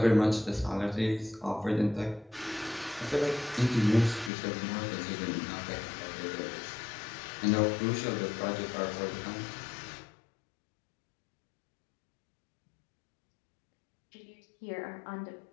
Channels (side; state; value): right; drops out; at 4.3 s